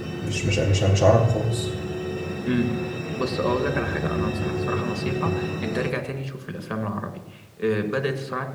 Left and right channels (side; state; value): both; identical; correlation 1.00